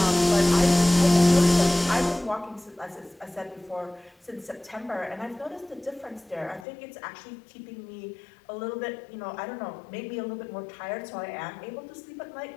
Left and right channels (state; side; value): drops out; right; at 6.7 s